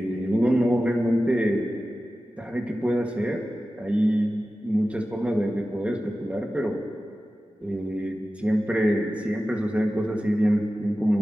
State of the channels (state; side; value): normal; both; correlation 0.94